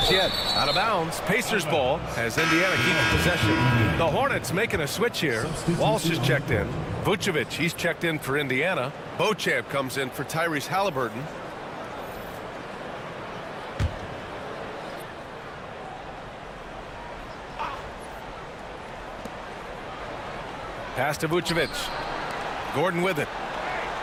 yet. Out of bounds. Pacers ball as Indiana keeps possession. The Hornets making a switch here. Walsh is checked in. Vucevic, he's checked in for Indiana. Beauchamp comes in for Tyrese Halliburton. Pass to Vucevic. Gordon with it.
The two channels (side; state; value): both; identical; correlation 1.00